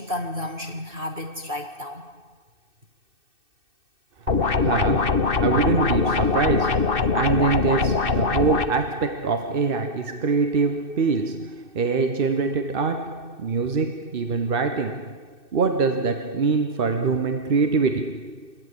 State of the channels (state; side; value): late; left; 2.6 ms